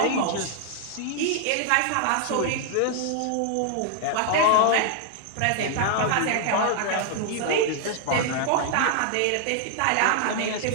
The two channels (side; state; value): both; different; correlation 0.00